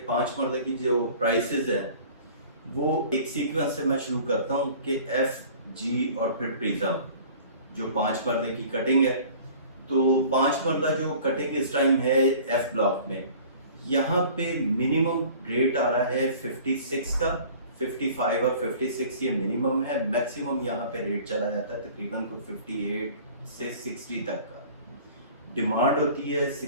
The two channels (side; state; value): both; inverted; correlation -0.47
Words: 5 मरले की जो प्राइसेस हैं वो एक सीक्वेंस से मैं शुरू करता हूँ कि एफ, जी और फिर प्रिज्म, जो 5 मरले की कटिंग है। तो 5 मरला जो कटिंग इस टाइम है एफ ब्लॉक में, यहाँ पे मिनिमम रेट आ रहा है 56 का, 55 और 56 ये मिनिमम है। मैक्सिमम यहाँ पे रेट चला जाता है तकरीबन को 58 से 60 तक का। डिमांड होती है